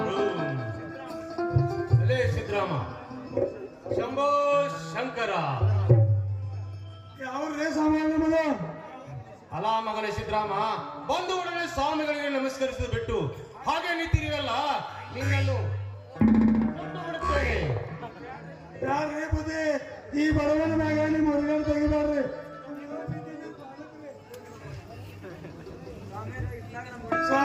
ರೂಂ ಅಲೇ ಸಿದ್ರಾಮ ಶಂಭೋ ಶಂಕರ ಯಾವ್ರೇ ಸಾಮಾನ್ಯ ಮಗ ಅಲ ಮಗನೇ ಸಿದ್ರಾಮ ಬಂದು ಉಡನೆ ಸ್ವಾಮಿಗಳಿಗೆ ನಮಸ್ಕರಿಸಿದ ಬಿಟ್ಟು ಹಾಗೆ ನಿಂತಿರಿವಲ್ಲ ನಿನ್ನನ್ನು ಕೊಟ್ಟು ಬಿಡುತ್ತೇನೆ. ಯಾರೇ ಬುದ್ಧಿ ಈ ಬಡವನ ಮ್ಯಾಗ ನಿಮ್ಮ ಹೊರಗಡೆ ತೆಗಿಬ್ಯಾಡ್ರಿ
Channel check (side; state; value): both; identical; correlation 1.00